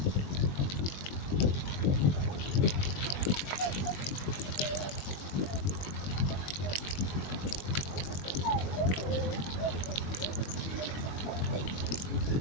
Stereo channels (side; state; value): right; late; 21 ms